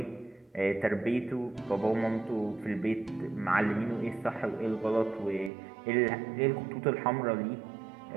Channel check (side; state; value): left; drops out; at 5.5 s